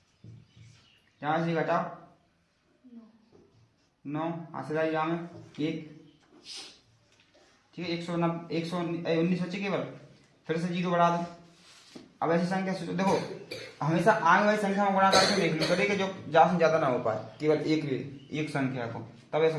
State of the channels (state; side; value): identical; both; correlation 1.00